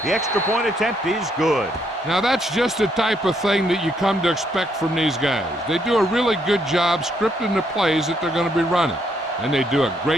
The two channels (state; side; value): normal; both; correlation 0.73